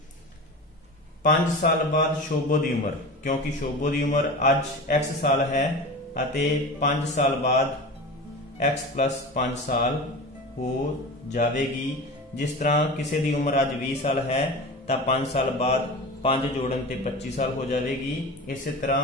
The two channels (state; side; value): normal; both; correlation 0.31